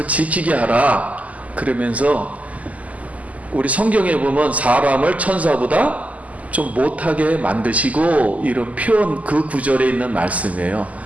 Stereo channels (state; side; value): late; left; 0.073 ms